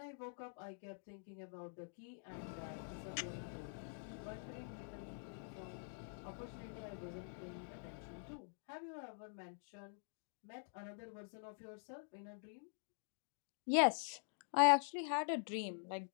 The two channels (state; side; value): silent; right; digital silence